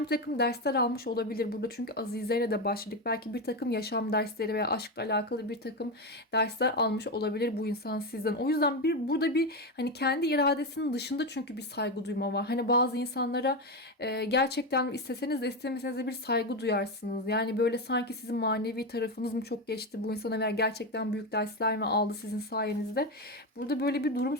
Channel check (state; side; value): normal; both; correlation 0.13